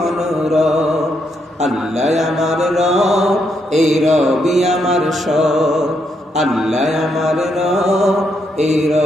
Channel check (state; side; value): normal; both; correlation 0.78